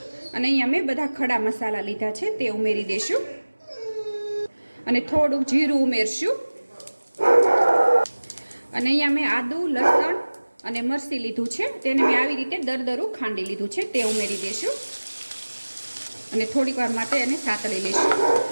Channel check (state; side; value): inverted; both; correlation -1.00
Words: અને અહીંયા મેં બધા ખડા મસાલા લીધા છે તે ઉમેરી દઈશું અને થોડુંક જીરું ઉમેરશું અને અહીંયા મેં આદુ, લસણ અને મરચી લીધું છે, તેને મેં આવી રીતે દરદરું ખાંડી લીધું છે તે ઉમેરી દઈશું અને થોડીક વાર માટે એને સાતળી લઈશું